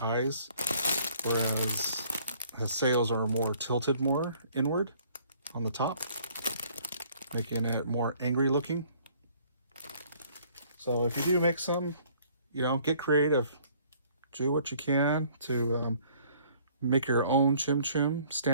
eyes, whereas Haseo's are more tilted more inward on the top, making it more angry looking. So if you do make some, get creative. Do what you can to make your own ChimChim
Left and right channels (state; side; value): inverted; both; correlation -0.59